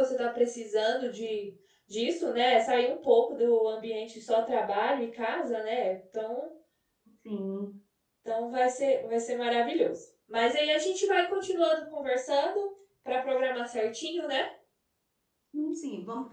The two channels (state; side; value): identical; both; correlation 1.00